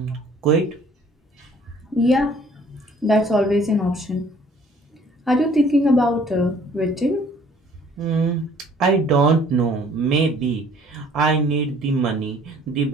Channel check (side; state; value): both; normal; correlation 0.56